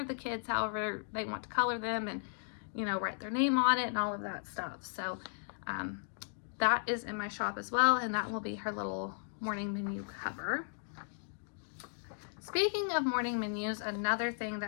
the kids however they want to color them, and, you know, write their name on it and all of that stuff. So that is in my shop as well, and that will be her little morning menu cover. Speaking of morning menus, another thing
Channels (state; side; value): silent; right; digital silence